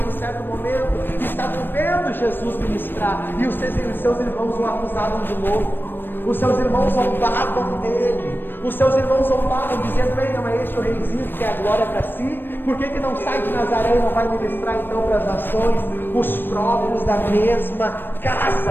em certo momento, estavam vendo Jesus ministrar, e os seus irmãos o acusavam de louco. Os seus irmãos zombavam dele. Os seus irmãos zombavam, dizendo: ei, não é este o reizinho que quer a glória para si? Por que não sai de Nazaré e não vai ministrar então para as nações? Os próprios da mesma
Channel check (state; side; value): late; right; 0.096 ms